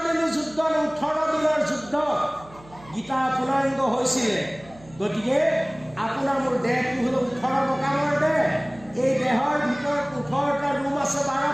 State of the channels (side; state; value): right; noise; hum, 23 dB below the sound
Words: দিনীয়া যুদ্ধ 18 দিনৰ যুদ্ধ গীতা পূৰ্ণাংগ হৈছিলে গতিকে আপোনাৰ মোৰ দেহটো হ'ল 18 মকামৰ দেহ এই দেহৰ ভিতৰত 18টা ৰুম আছে